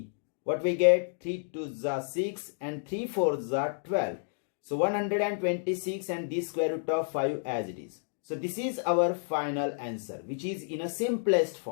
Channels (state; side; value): silent; right; digital silence